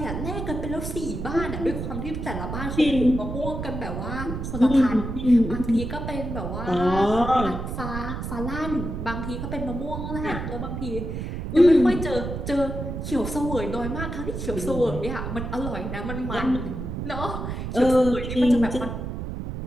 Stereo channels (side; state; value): right; noise; rumble, 5 dB below the sound